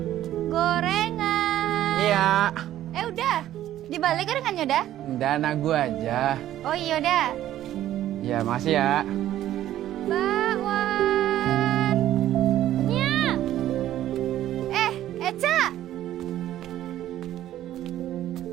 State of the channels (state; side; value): quieter; left; 12.8 dB